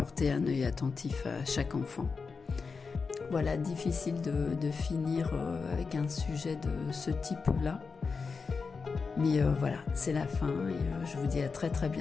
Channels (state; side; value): quieter; right; 4.9 dB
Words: un œil attentif à chaque enfant. Voilà, difficile de finir avec un sujet de ce type-là. Mais voilà, c'est la fin et je vous dis à très très